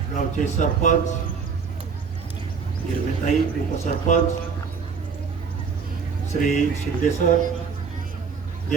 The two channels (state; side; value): quieter; left; 5.7 dB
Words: गावचे सरपंच हिरवेताई, उपसरपंच श्री शिंदे सर,